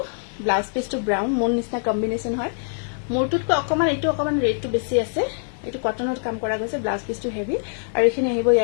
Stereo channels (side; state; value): right; silent; 56 dB below the other